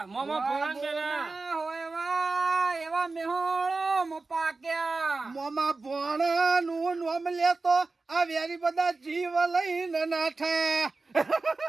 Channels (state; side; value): quieter; left; 3.7 dB